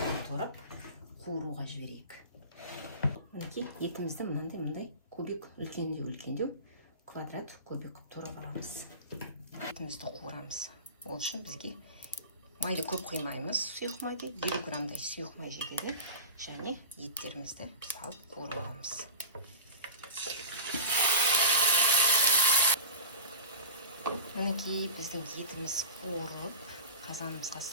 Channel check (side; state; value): both; inverted; correlation -0.31